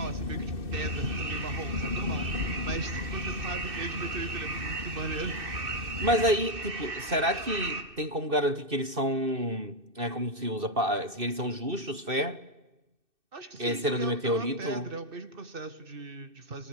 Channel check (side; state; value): left; late; 2.6 ms